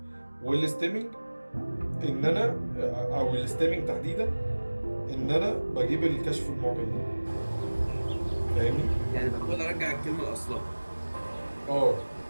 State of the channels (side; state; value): both; inverted; correlation -1.00